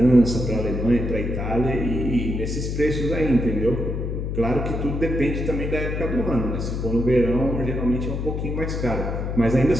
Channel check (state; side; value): noise; left; hum, 3 dB below the sound